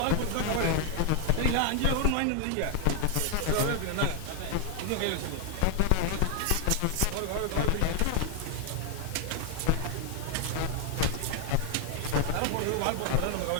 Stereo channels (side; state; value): both; different; correlation 0.00